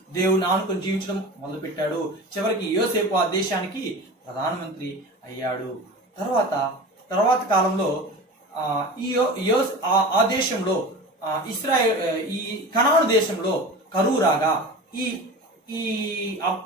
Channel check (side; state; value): both; normal; correlation 0.33